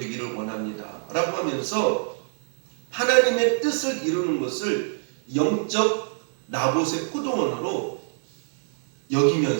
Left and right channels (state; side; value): silent; left; digital silence